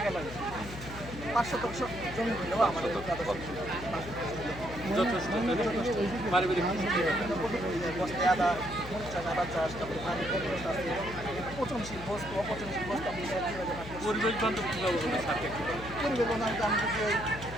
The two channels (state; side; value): noise; left; hum, 11 dB below the sound